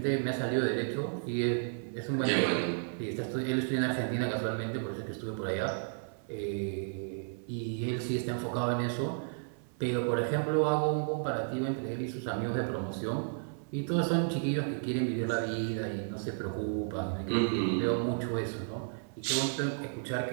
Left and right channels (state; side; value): silent; left; 56 dB below the other